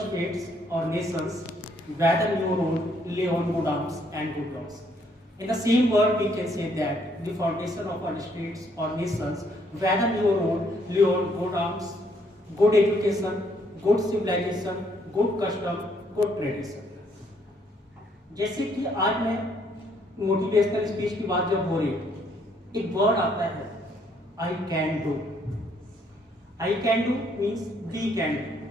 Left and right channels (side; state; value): both; normal; correlation 0.68